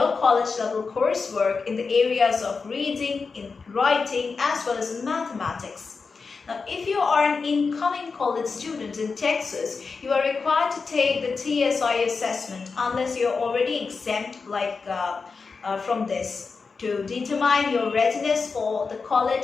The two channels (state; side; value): quieter; right; 4.7 dB